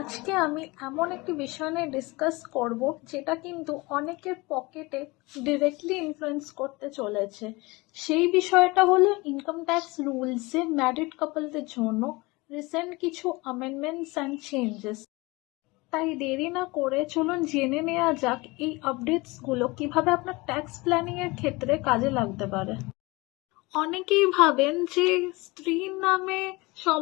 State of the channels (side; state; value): right; quieter; 23.6 dB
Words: আমি এমন একটি বিষয় নিয়ে ডিসকাস করব যেটা কিন্তু অনেকের পকেটে ডিরেক্টলি ইনফ্লুয়েন্স করতে চলেছে। সেই বিষয়টা হলো ইনকাম ট্যাক্স রুলসে ম্যারিড কাপলদের জন্য রিসেন্ট কিছু অ্যামেন্ডমেন্টস অ্যান্ড চেঞ্জেস। তাই দেরি না করে চলুন জেনে নেওয়া যাক এই আপডেটসগুলো কিভাবে আপনার ট্যাক্স প্ল্যানিংয়ের ক্ষেত্রে কাজে লাগতে পারে। অনেকেই ভাবেন যে স্ত্রীর নামে